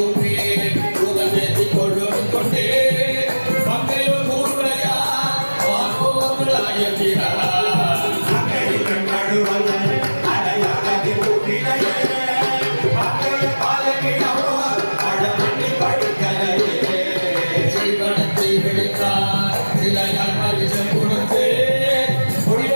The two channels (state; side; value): inverted; both; correlation -1.00